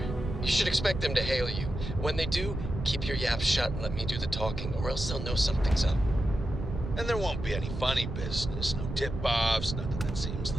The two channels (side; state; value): right; noise; rumble, 6 dB below the sound